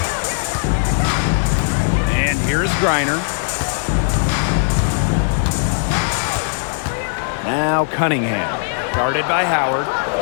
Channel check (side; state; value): right; silent; digital silence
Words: And here's Griner. Now Cunningham. Guarded by Howard.